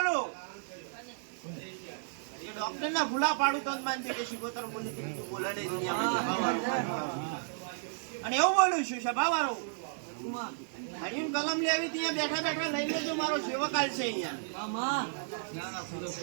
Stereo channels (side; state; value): left; silent; digital silence